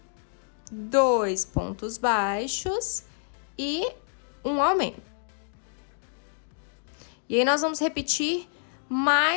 2 pontos baixos e um aumento. E aí, nós vamos repetir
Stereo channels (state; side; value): silent; right; digital silence